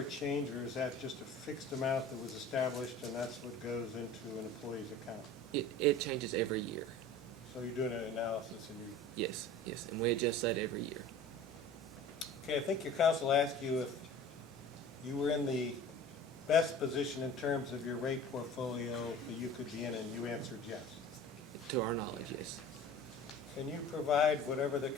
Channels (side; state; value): both; normal; correlation 0.41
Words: change, or is that just a fixed amount that was established and that's what goes into an employee's account? It changes every year. So you're doing an analysis and you, Yes, yes, and we adjust that every year. okay, I think your counsel asked you if you were in the best position in terms of your rate portfolio that you could be in, and you answered yes. To our knowledge, yes. Can you provide whatever the